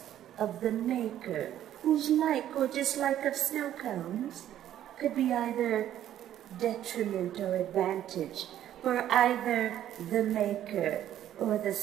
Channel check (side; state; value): left; quieter; 11.6 dB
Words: of the maker, whose like or dislike of snow cones could be either detriment or advantage for either the maker or the